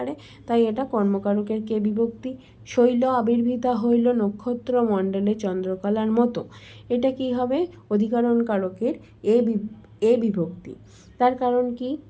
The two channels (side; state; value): both; identical; correlation 1.00